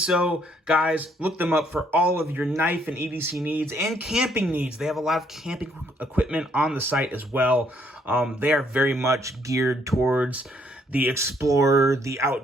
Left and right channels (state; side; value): normal; both; correlation 0.68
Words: Guys, look them up for all of your knife and EDC needs and camping needs. They have a lot of camping equipment on the site as well. They are very much geared towards the explorer, the